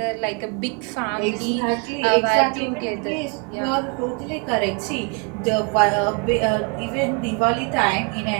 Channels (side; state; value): left; quieter; 33.1 dB